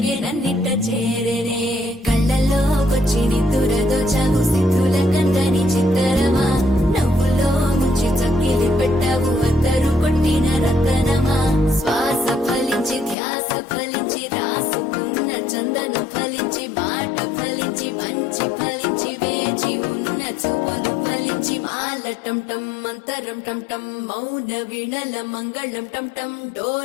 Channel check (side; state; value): right; drops out; at 13.2 s